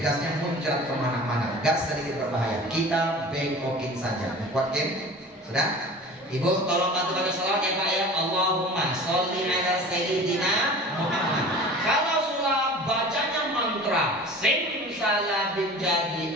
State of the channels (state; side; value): normal; both; correlation 0.39